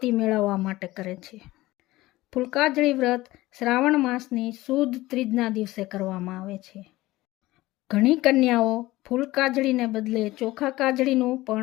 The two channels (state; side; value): quieter; right; 18.2 dB